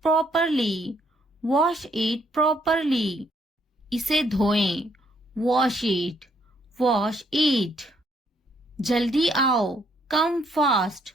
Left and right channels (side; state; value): both; normal; correlation 0.70